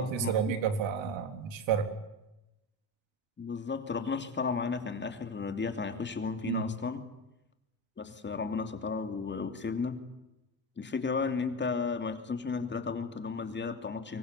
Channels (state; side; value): normal; both; correlation 0.22